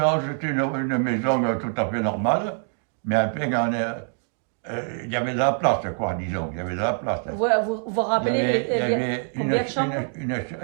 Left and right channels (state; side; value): silent; left; 55 dB below the other